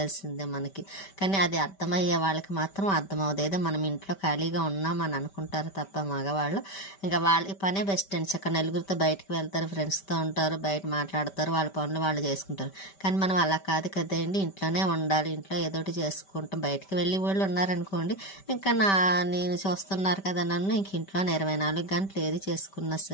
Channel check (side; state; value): right; late; 5.1 ms